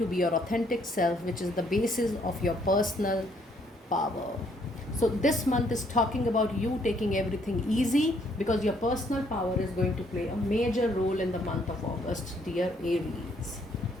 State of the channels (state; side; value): normal; both; correlation 0.67